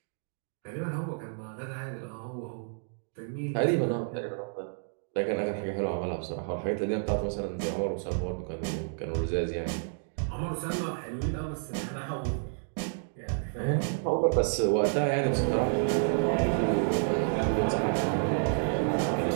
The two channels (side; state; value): left; silent; digital silence